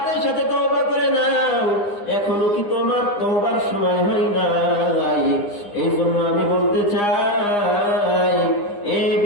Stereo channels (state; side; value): late; right; 9.8 ms